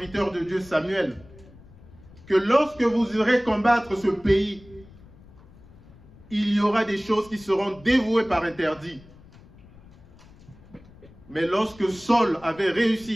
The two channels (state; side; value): noise; left; rumble, 23 dB below the sound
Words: de Dieu Samuel, que lorsque vous irez combattre ce pays, il y aura des choses qui seront dévouées par interdit. Mais lorsque Saul avait